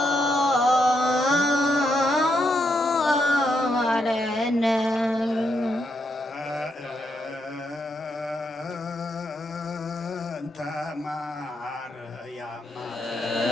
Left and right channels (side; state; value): both; normal; correlation 0.79